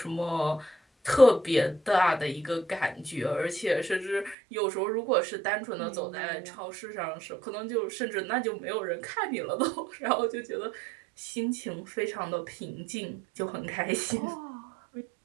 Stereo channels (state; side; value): drops out; left; at 4.4 s